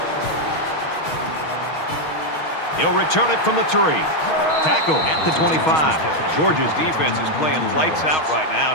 He'll return it from the 3. Tackle at the 25. Georgia's defense is playing lights out right now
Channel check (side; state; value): right; late; 6.3 ms